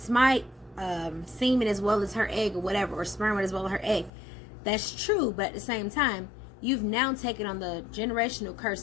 semen as well as her egg or whatever, or sperm as well as her egg. That's true, but at the same time, you've now taken on the generational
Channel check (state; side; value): drops out; right; at 4.1 s